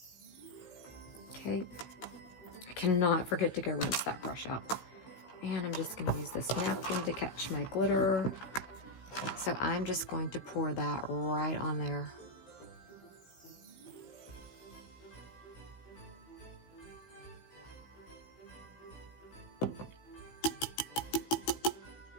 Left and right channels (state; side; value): late; right; 16 ms